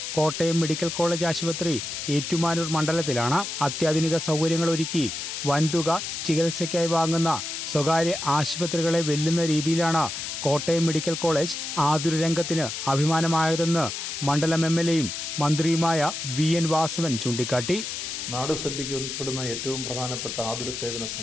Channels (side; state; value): left; noise; hiss, 5 dB below the sound